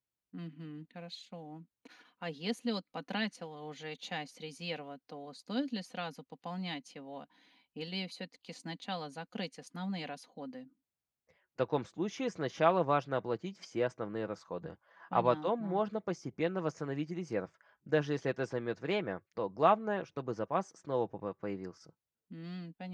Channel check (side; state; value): both; identical; correlation 1.00